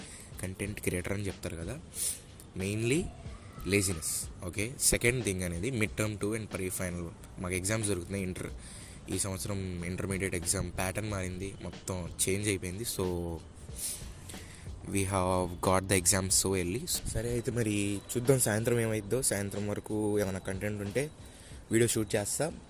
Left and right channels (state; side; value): identical; both; correlation 1.00